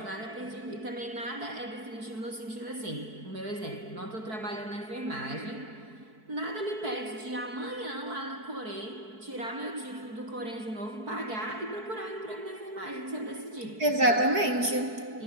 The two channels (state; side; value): late; left; 4.6 ms